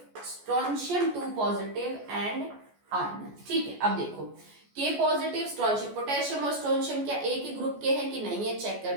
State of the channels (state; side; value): late; left; 14 ms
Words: strontium 2 positive and argon. ठीक है, अब देखो K पॉजिटिव स्ट्रोंशियम, पोटेशियम और स्ट्रोंशियम क्या एक ही ग्रुप के हैं कि नहीं है, चेक कर